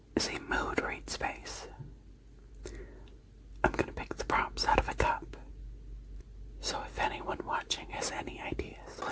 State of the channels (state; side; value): identical; both; correlation 1.00